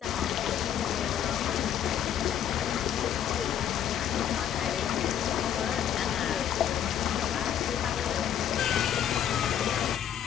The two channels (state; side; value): quieter; right; 9.8 dB